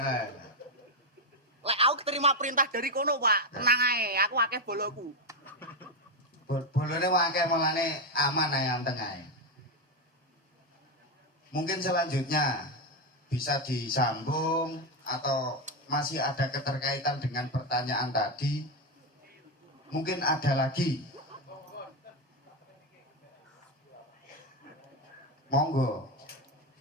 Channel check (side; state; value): both; normal; correlation 0.08